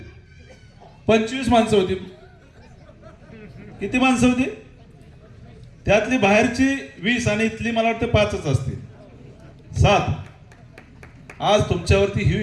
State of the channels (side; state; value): both; identical; correlation 1.00